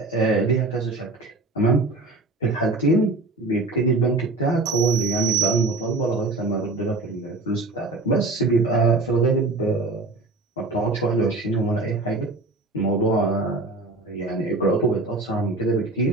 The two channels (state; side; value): quieter; left; 3.1 dB